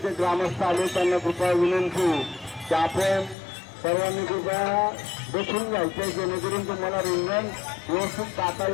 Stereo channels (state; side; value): drops out; right; at 3.4 s